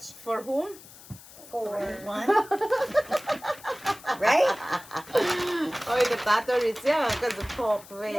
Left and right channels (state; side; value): noise; left; hiss, 19 dB below the sound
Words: For whom? for one. Right? Oh, the tattoo is yeah, because the pop.